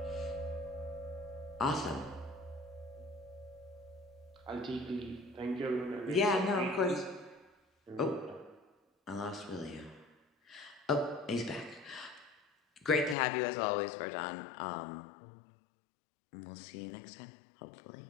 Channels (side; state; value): right; drops out; at 13.2 s